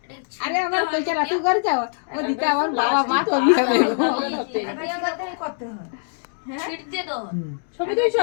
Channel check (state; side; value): silent; right; digital silence